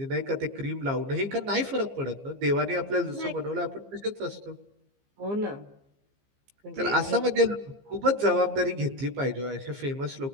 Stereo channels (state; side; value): late; left; 15 ms